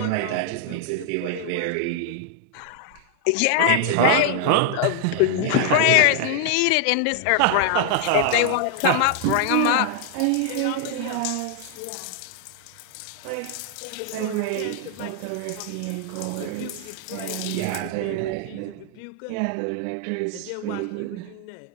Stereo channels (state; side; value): different; both; correlation 0.00